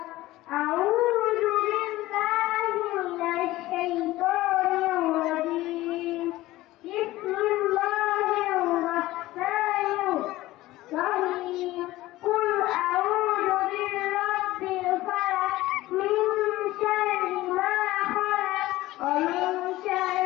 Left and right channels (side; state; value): right; quieter; 17.2 dB